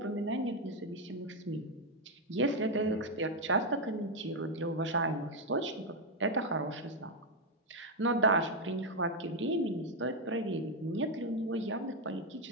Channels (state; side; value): normal; both; correlation 0.03